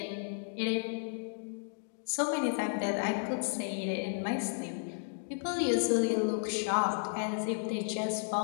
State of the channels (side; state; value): right; silent; digital silence